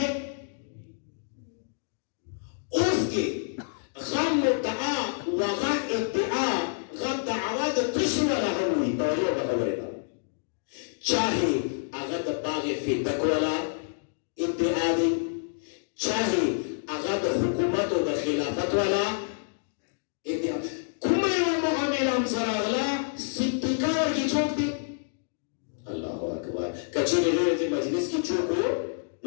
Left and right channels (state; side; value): silent; right; digital silence